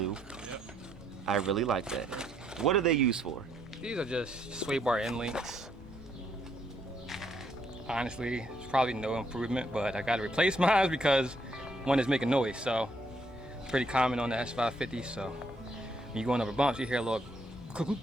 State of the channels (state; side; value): normal; both; correlation 0.72